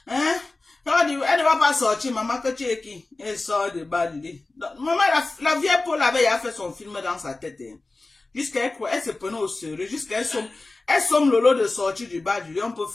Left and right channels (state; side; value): quieter; right; 3.3 dB